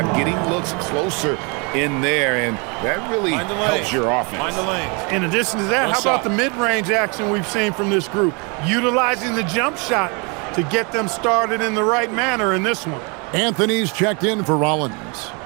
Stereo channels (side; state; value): left; quieter; 32.3 dB